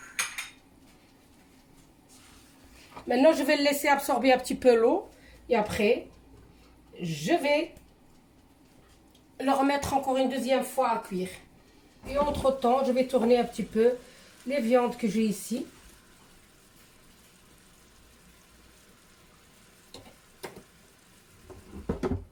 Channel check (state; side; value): identical; both; correlation 1.00